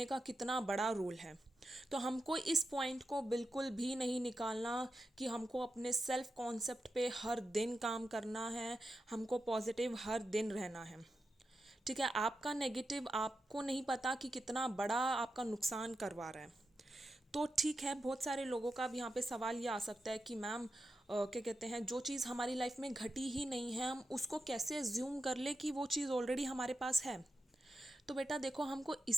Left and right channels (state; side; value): normal; both; correlation 0.88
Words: का कितना बड़ा रोल है। तो हमको इस पॉइंट को बिल्कुल भी नहीं निकालना कि हमको अपने सेल्फ कॉन्सेप्ट पे हर दिन काम करना है, हमको पॉजिटिव हर दिन रहना है। ठीक है, आपका नेगेटिव आपको नहीं पता कि कितना बड़ा आपका नुकसान करवा रहा है। तो ठीक है, बहुत सारे लोगों का अब यहाँ पे सवाल ये आ सकता है कि मैम क्या कहते हैं, जो चीज़ हमारी लाइफ में घटी ही नहीं है, हम उसको कैसे एज्यूम कर ले कि वो चीज़ ऑलरेडी हमारे पास है। तो बेटा देखो, हमको